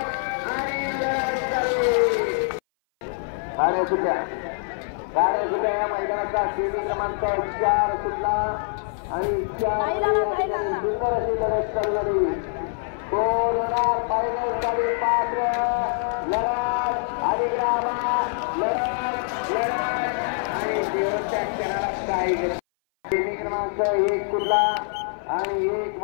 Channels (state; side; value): silent; right; 58 dB below the other